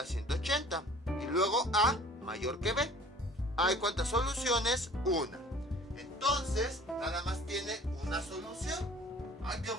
180. Y luego A mayor que B. ¿Hay cuántas soluciones? Una. Entonces, nada más tiene una solución. Ay, qué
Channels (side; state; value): both; normal; correlation 0.48